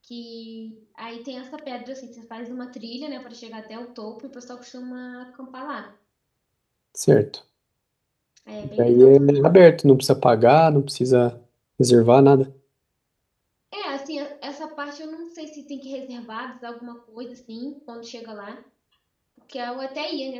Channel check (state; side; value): identical; both; correlation 1.00